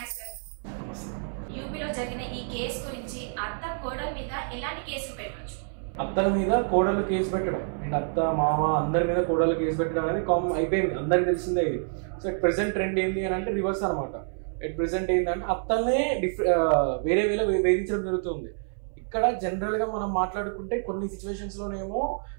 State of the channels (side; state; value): left; silent; 60 dB below the other